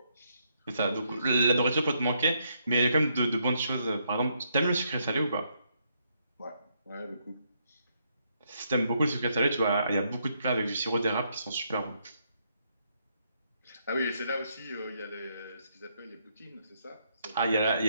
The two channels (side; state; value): both; inverted; correlation -0.76